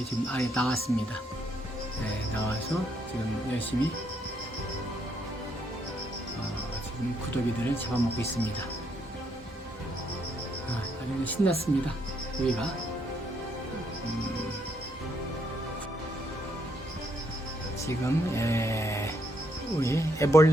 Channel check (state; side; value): normal; both; correlation 0.74